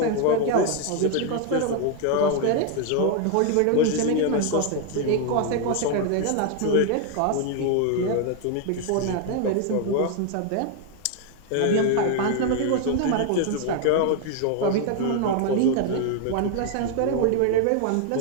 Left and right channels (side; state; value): both; different; correlation 0.00